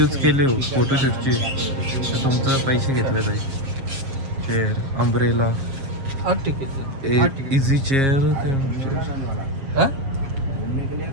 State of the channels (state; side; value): late; left; 7.4 ms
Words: केले हो फोटोशूटची तर तुमचं पैसे घेतले जाईल. चेअर अम्ब्रेला इझी चेअर